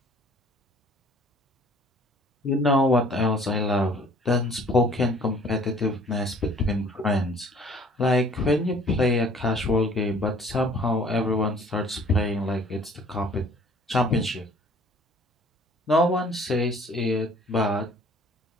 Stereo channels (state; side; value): normal; both; correlation 0.54